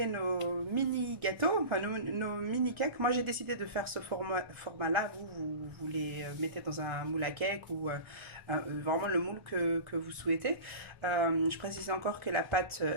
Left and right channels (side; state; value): left; late; 1.1 ms